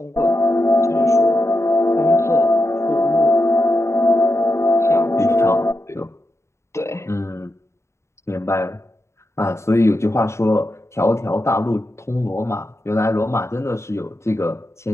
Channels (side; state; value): right; late; 0.13 ms